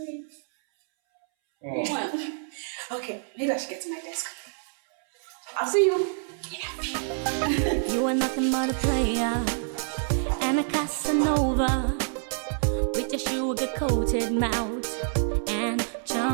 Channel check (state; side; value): silent; left; 60 dB below the other